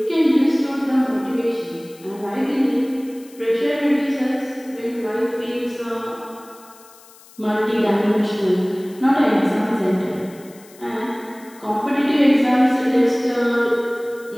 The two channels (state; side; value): noise; left; hiss, 24 dB below the sound